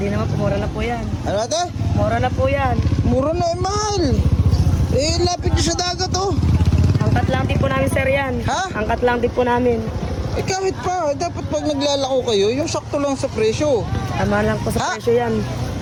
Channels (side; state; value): both; identical; correlation 1.00